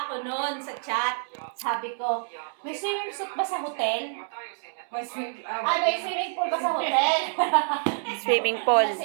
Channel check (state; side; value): silent; left; digital silence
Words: ako noon sa chat. Sabi ko, may swimming suit ba sa hotel? May sweet. May swimming pool ba sa hotel? Swimming pool.